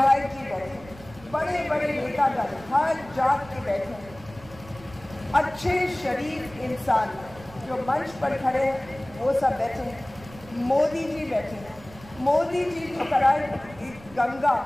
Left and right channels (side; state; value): right; noise; rumble, 20 dB below the sound